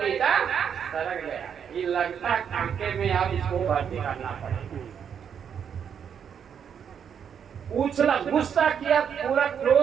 ईटा सरक गया, ये लगता कांटे में अब इसको भर्ती करना पड़ेगा। उछला, गुस्सा किया पूरा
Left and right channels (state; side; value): quieter; left; 7.8 dB